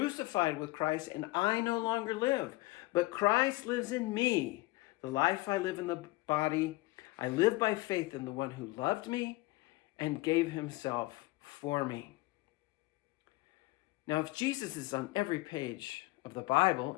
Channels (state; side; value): quieter; right; 21.0 dB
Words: with Christ, and I no longer live, but Christ lives in me. The life I live in the body, I live by faith in the one who loved me and gave himself for me. Now, if Jesus is on every page of the Bible,